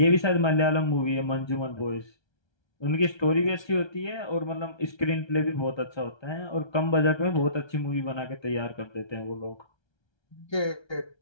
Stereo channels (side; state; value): right; late; 1.3 ms